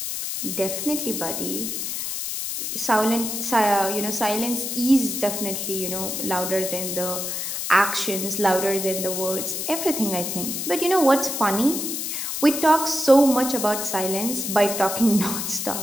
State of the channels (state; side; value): noise; left; hiss, 3 dB below the sound